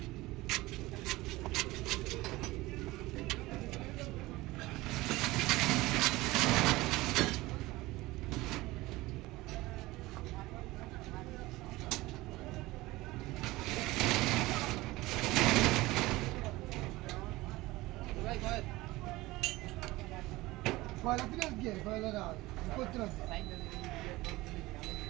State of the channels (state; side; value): quieter; left; 19.6 dB